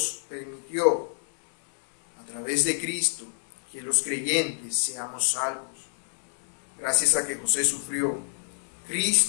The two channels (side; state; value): right; silent; digital silence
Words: permitió a través de Cristo que los creyentes seamos salvos. Gracias a que José sufrió,